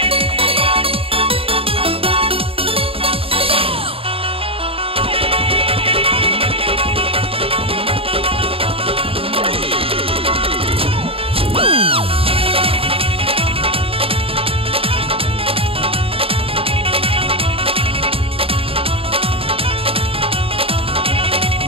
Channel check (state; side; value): late; left; 0.27 ms